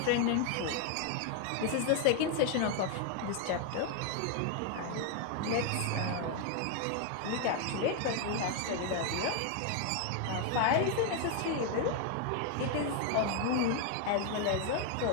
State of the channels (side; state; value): both; different; correlation 0.01